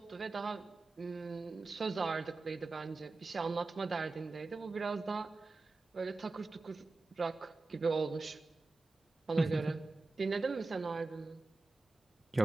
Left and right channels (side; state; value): left; quieter; 3.5 dB